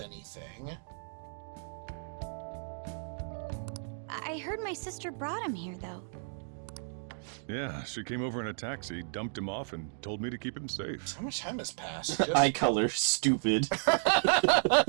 anything. I heard my sister brought him here, though. Yeah, she came over in a taxi, dumped him off, and told me to keep him safe. How much time has passed? Eye color, stupid.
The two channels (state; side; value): silent; left; digital silence